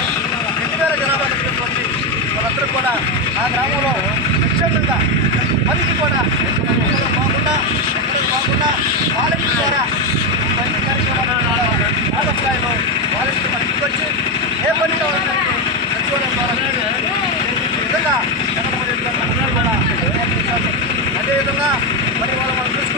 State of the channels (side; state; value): both; normal; correlation 0.09